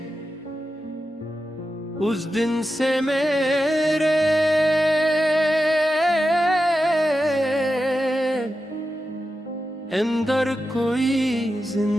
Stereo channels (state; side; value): normal; both; correlation 0.91